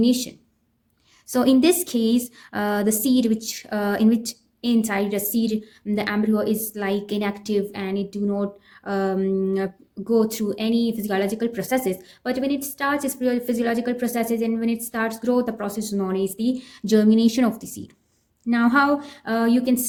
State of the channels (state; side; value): identical; both; correlation 1.00